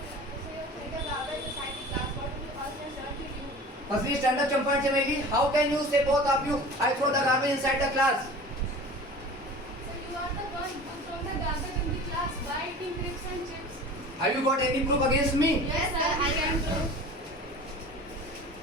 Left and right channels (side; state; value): both; normal; correlation 0.39